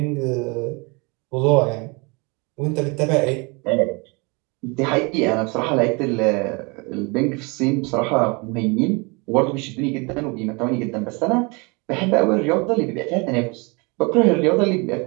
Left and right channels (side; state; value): left; quieter; 29.3 dB